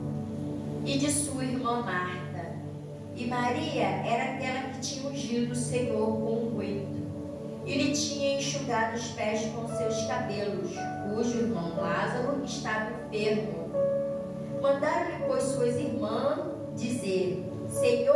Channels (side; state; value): both; identical; correlation 1.00